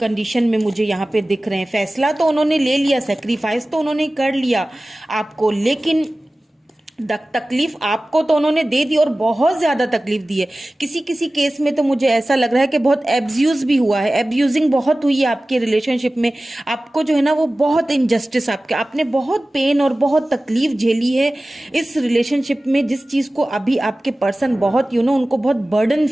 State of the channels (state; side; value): normal; both; correlation 0.97